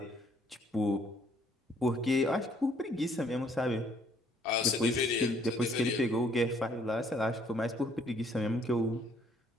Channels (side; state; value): both; normal; correlation 0.63